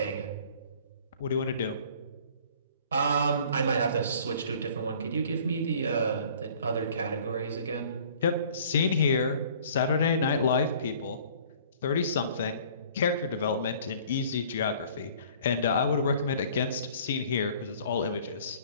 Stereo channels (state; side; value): inverted; both; correlation -0.52